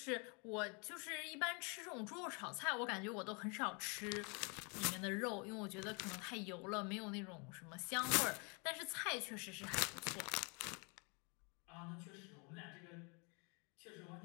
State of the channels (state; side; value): quieter; right; 33.0 dB